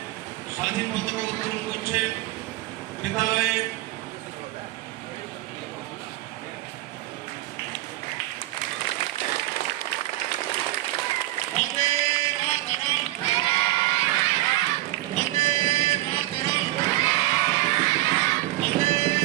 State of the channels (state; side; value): quieter; left; 17.1 dB